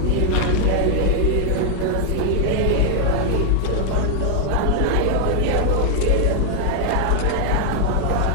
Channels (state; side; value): different; both; correlation 0.00